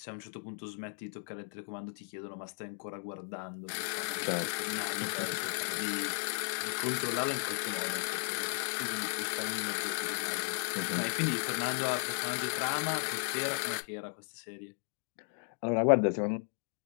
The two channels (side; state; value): right; silent; digital silence